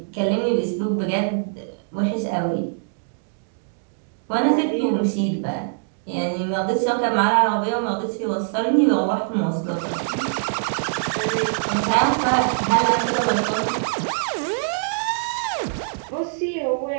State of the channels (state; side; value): silent; left; digital silence